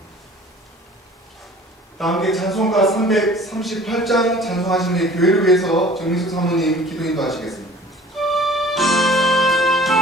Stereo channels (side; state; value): both; normal; correlation 0.48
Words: 다 함께 찬송가 338장 찬송하시는 교회를 위해서 정민숙 사모님 기도 인도하시겠습니다.